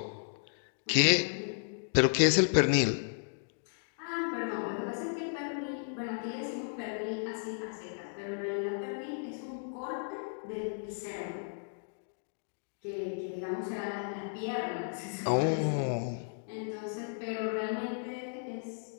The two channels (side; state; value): right; silent; digital silence